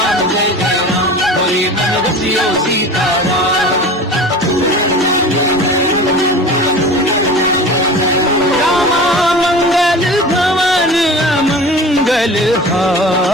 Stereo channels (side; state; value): both; normal; correlation 0.37